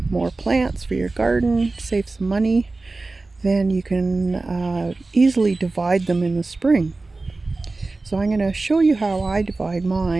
more plants for your garden, save some money, then you can easily divide them in the spring. So I'm going to show you how I divide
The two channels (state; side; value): quieter; left; 3.4 dB